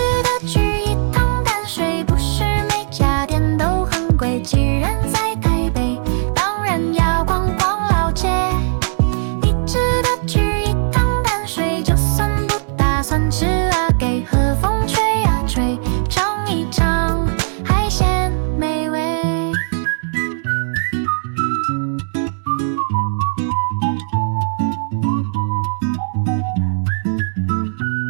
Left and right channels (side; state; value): left; silent; digital silence